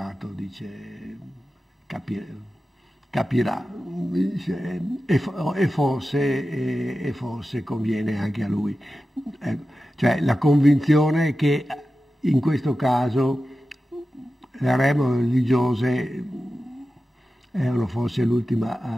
dice, capirà, dice, e forse conviene anche a lui. Cioè la convinzione che in questo caso le regole religiose erano forse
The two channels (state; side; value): normal; both; correlation 0.93